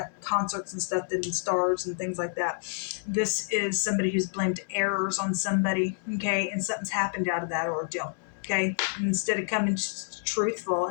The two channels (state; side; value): silent; right; 59 dB below the other